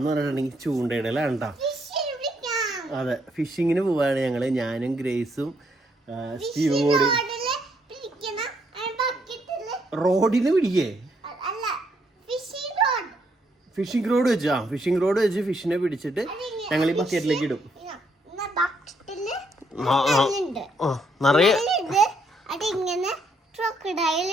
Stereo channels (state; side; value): normal; both; correlation 0.73